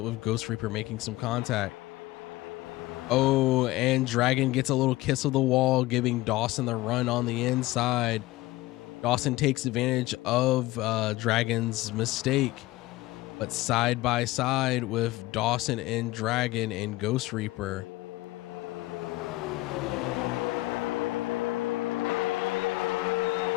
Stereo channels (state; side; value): quieter; right; 18.6 dB